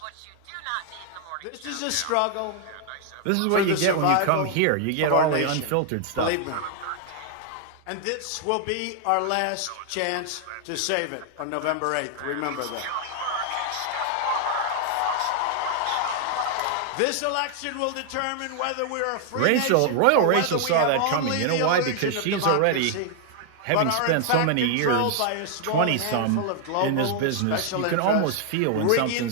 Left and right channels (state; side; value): different; both; correlation 0.00